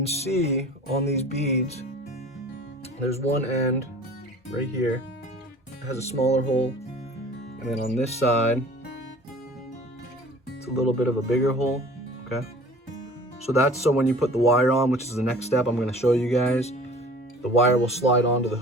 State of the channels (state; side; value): normal; both; correlation 0.46